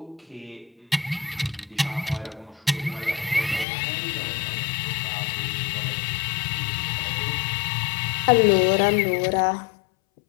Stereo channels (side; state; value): right; drops out; at 3.7 s